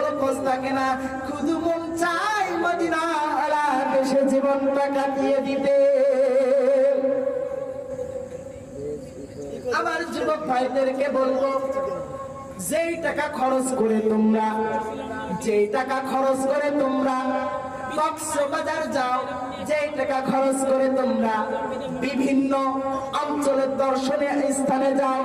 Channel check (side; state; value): both; identical; correlation 1.00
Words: খোঁজ থাকে না শুধু মন চায় মদিনা ওয়ালা দেশে জীবনটা কাটিয়ে দিতে আমার যুবক ভাইদেরকে বলবো যেই টাকা খরচ করে তোমরা কক্সবাজার যাও যেই টাকা খরচ করে তোমরা বিভিন্ন অঞ্চলের দর্শনীয় স্থানে যাও